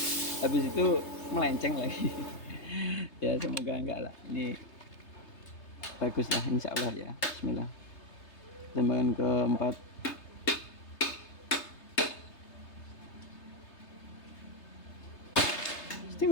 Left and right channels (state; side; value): late; right; 3.3 ms